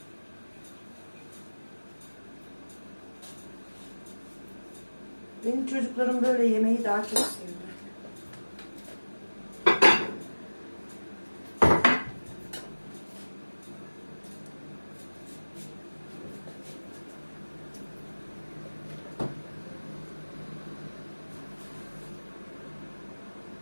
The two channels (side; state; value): both; inverted; correlation -1.00